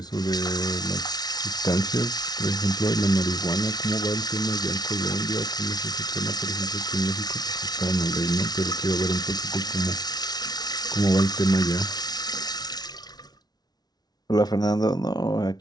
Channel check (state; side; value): late; right; 0.19 ms